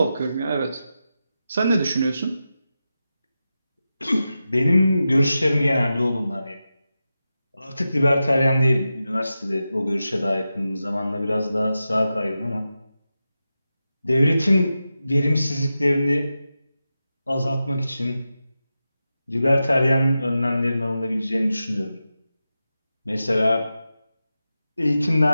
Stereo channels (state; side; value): inverted; both; correlation -0.91